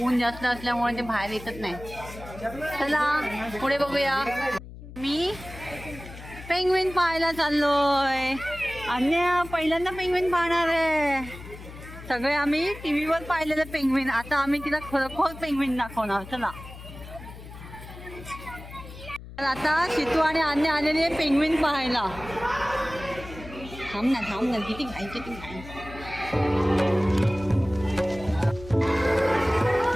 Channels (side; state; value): left; noise; hum, 14 dB below the sound